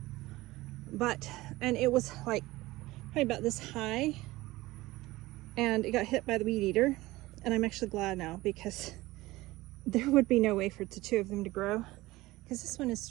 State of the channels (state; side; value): quieter; left; 19.1 dB